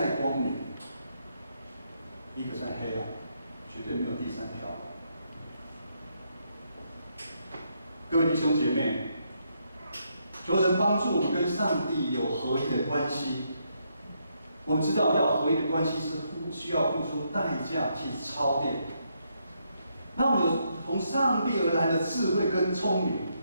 光明，一个在黑暗，绝对没有第3条。各位弟兄姐妹，求神帮助我们跟上帝有合一的关系。我们知道要合一的关系是需要付出代价去操练。那我们有从上帝而来的智慧跟聪明，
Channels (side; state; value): both; inverted; correlation -0.77